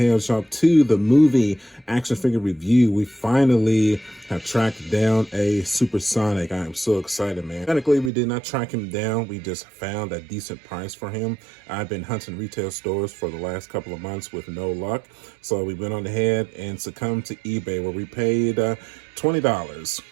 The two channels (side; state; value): left; drops out; at 8.1 s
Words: 2, the movie action figure review. We finally have tracked down a Super Sonic. I am so excited, man. Technically, we did not track him down. We just found a decent price for him. I've been hunting retail stores for the last couple of months with no luck. So we went on ahead and succumbed to eBay where we paid $20.